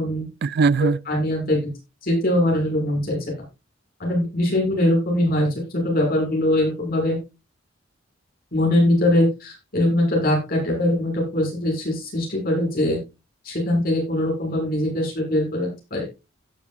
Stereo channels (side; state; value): both; normal; correlation 0.57